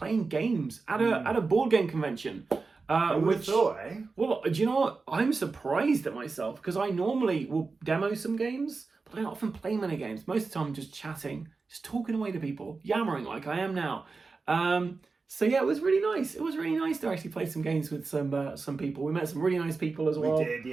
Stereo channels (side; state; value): left; quieter; 4.2 dB